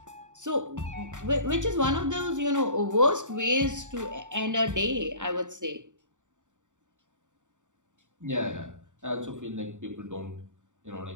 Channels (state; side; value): late; left; 0.86 ms